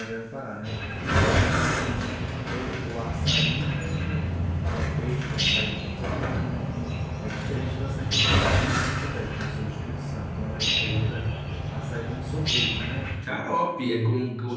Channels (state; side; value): identical; both; correlation 1.00